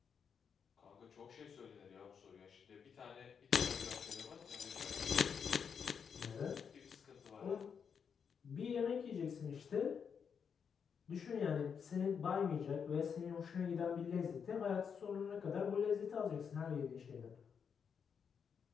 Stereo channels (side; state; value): right; quieter; 6.8 dB